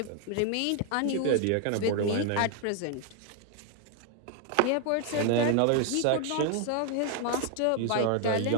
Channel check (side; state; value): both; different; correlation 0.00